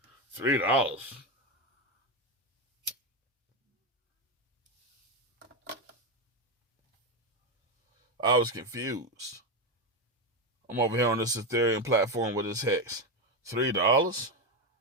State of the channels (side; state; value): both; normal; correlation 0.10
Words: $3. I was confused. I'm over here on this Ethereum platform with this hex. $3?